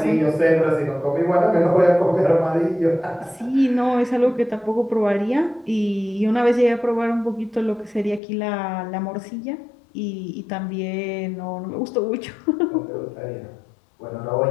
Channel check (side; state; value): right; drops out; at 8.2 s